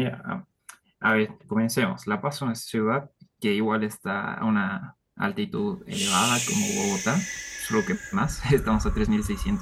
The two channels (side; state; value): both; identical; correlation 1.00